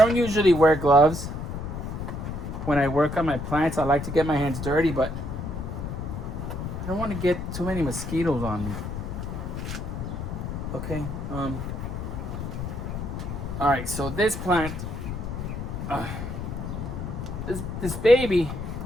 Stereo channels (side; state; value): left; noise; rumble, 5 dB below the sound